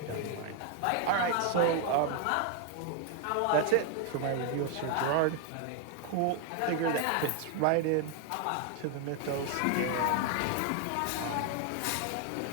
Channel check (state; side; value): different; both; correlation 0.01